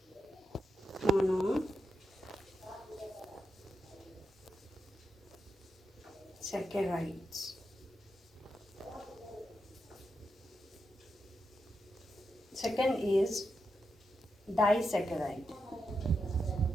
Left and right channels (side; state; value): both; normal; correlation 0.86